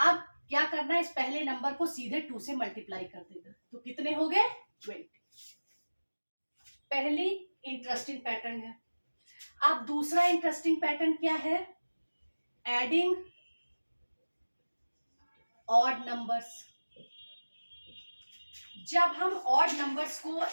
क्या करना है, इस पहले नंबर को सीधे 2 से मल्टीप्लाई कर देगा, तो कितने हो गए, 20। पहली इंटरेस्टिंग पैटर्न है। अब दूसरा इंटरेस्टिंग पैटर्न क्या है, एडिंग ऑड नंबर्स। जब हम ऑड नंबर्स को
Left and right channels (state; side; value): inverted; both; correlation -1.00